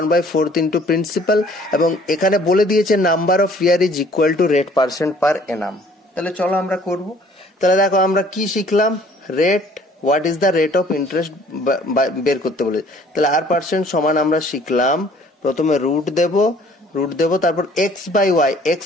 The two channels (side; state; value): both; normal; correlation 0.56